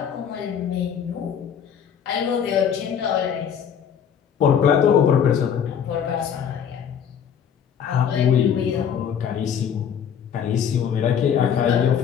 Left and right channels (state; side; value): quieter; right; 8.1 dB